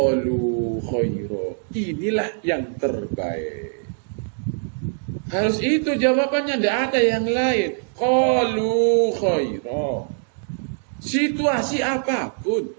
khaira. Inilah yang terbaik. Harus itu jawabannya, tidak ada yang lain. Qalu khaira. Situasi apapun,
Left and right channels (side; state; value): left; silent; digital silence